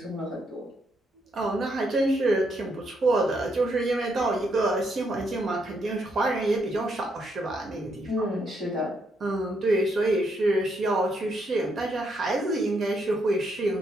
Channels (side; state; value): both; normal; correlation 0.76